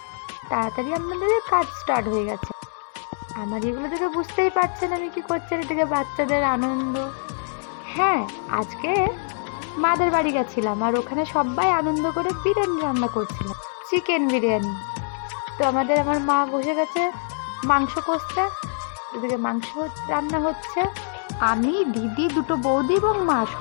তাড়াতাড়ি আমাদের কাজ স্টার্ট হয়ে গেছে। আমার এগুলো দেখে বুঝতেই পারছেন আমি কি করছি, এদিকে বাচ্চাদের আনন্দ। হ্যাঁ, আজকে মাদের বাড়ি গেছিলাম আর ওখানে সবাই আনন্দ করে বিরিয়ানি রান্না করছিলাম, চিকেন বিরিয়ানি। তো আমার মা বসে গেছে মাংস কষতে, এদিকে মাংস রান্না হচ্ছে। আমি, দিদি, দুটো বৌদি এবং মা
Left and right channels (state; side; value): silent; right; digital silence